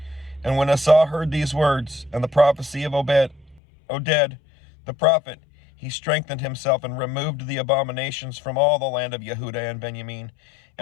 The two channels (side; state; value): right; drops out; at 3.6 s